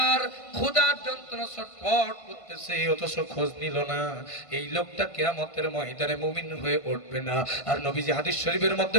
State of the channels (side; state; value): right; late; 1.5 ms